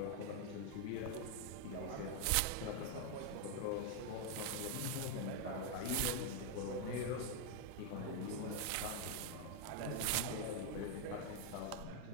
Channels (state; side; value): different; both; correlation 0.00